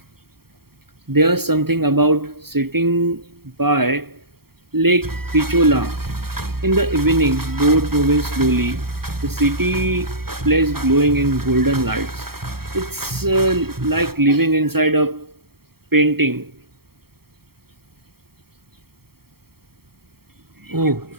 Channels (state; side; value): late; left; 0.95 ms